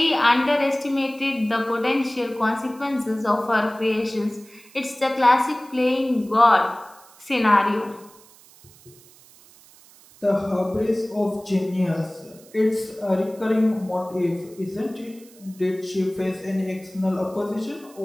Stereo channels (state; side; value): noise; right; hiss, 25 dB below the sound